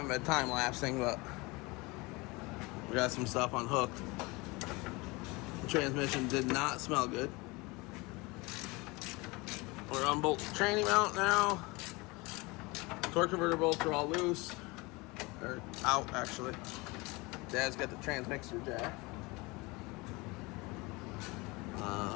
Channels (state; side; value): quieter; right; 24.7 dB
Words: been time lapsing, but we got some stuff unhooked. The transmission did not smell good. We're unbolt the tranny mount now. Torque converter bolts are all loose. Or out actually. Dad's got the transmixer jack.